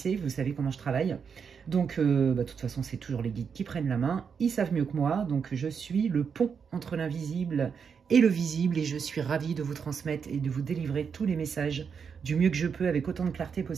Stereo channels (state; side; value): quieter; left; 6.4 dB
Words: vous savez comment je travaille. Donc, de toute façon, c'est toujours les guides qui prennent la main. Ils savent mieux que moi. Donc, je suis le pont entre l'invisible et le visible. Et je suis ravie de vous transmettre et de vous délivrer tous les messages du mieux que je peux avec autant de clarté